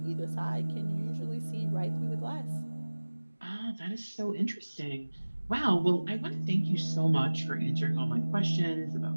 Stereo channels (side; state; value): both; inverted; correlation -1.00